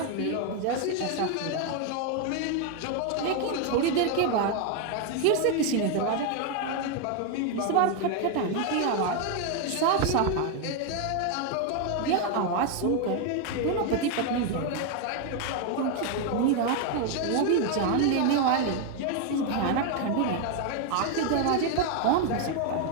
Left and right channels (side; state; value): both; different; correlation 0.01